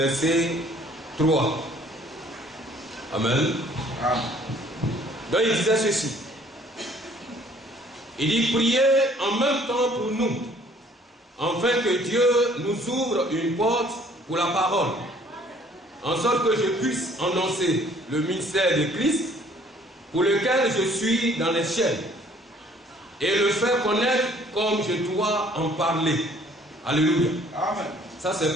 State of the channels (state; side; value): normal; both; correlation 0.58